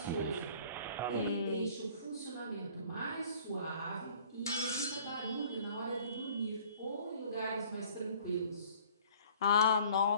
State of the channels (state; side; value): inverted; both; correlation -0.52